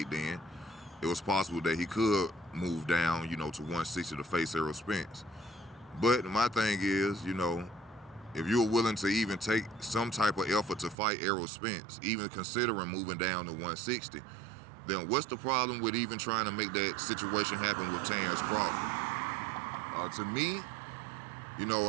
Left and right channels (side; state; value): left; drops out; at 11.0 s